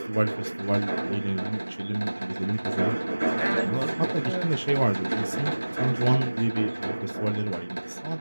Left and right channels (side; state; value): both; inverted; correlation -1.00